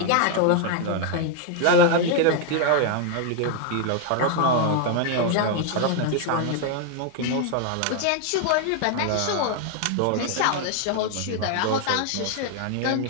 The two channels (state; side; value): different; both; correlation 0.00